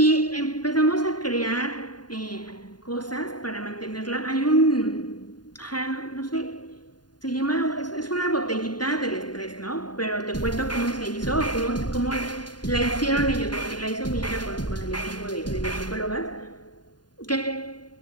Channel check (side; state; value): right; late; 0.70 ms